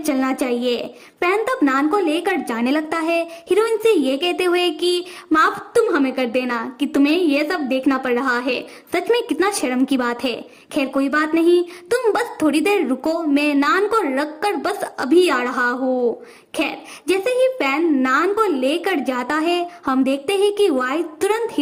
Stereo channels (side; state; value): both; identical; correlation 1.00